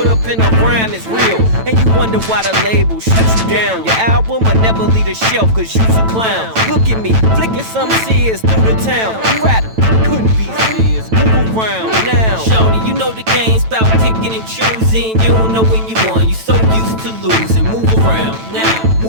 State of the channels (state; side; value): late; left; 9.0 ms